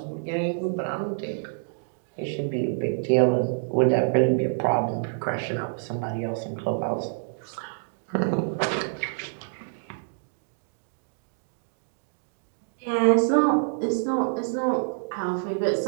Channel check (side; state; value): left; silent; digital silence